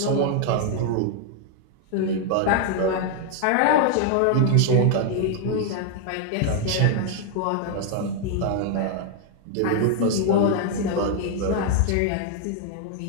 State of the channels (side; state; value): both; different; correlation 0.00